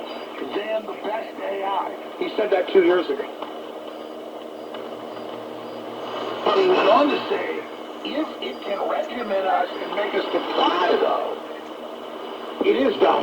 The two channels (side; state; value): both; identical; correlation 1.00